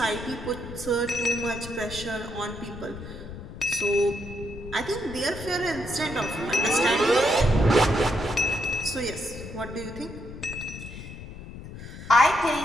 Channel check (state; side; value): noise; left; rumble, 12 dB below the sound